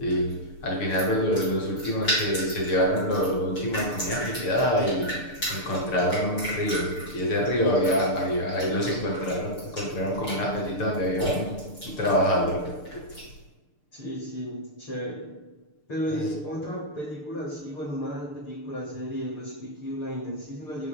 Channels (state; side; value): late; right; 6.7 ms